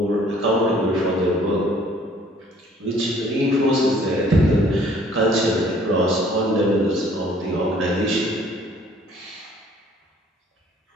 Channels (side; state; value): both; normal; correlation 0.57